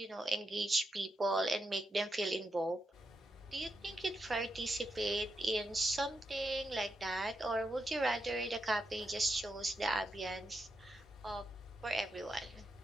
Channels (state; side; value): normal; both; correlation 0.85